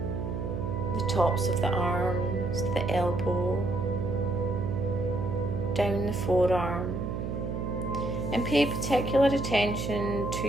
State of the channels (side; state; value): right; noise; hum, 4 dB below the sound